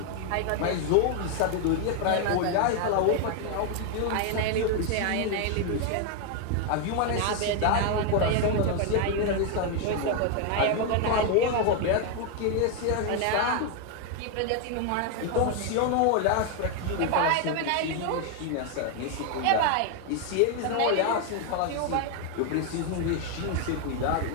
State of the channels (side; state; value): both; different; correlation 0.00